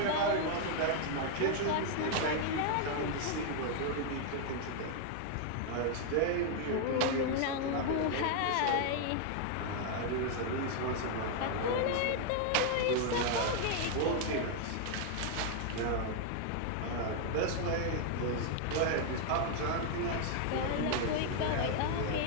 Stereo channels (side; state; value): both; different; correlation 0.00